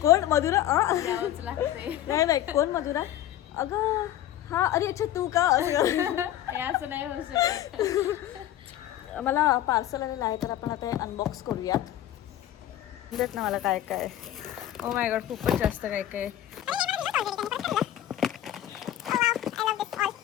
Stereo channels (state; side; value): quieter; right; 12.5 dB